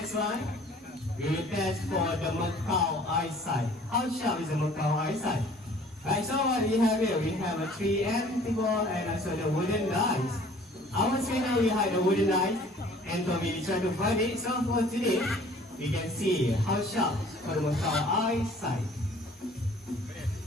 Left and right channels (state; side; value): normal; both; correlation 0.52